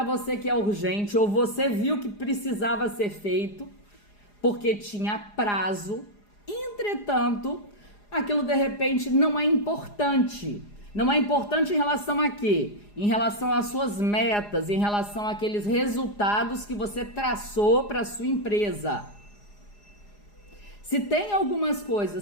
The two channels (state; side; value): late; right; 4.9 ms